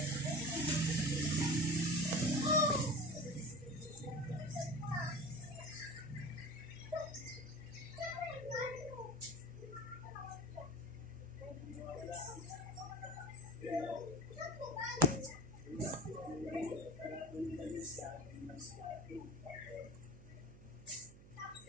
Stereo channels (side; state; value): right; noise; hum, 18 dB below the sound